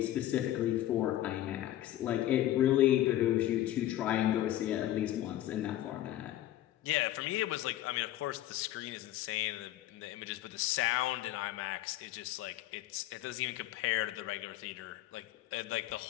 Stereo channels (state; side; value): quieter; right; 13.8 dB